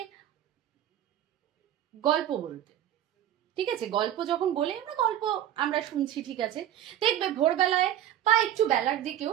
গল্প বলতে, ঠিক আছে, গল্প যখন বলে, আমরা শুনছি, ঠিক আছে, দেখবে ভোরবেলায় বা একটু বেলার দিকেও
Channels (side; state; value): left; quieter; 11.6 dB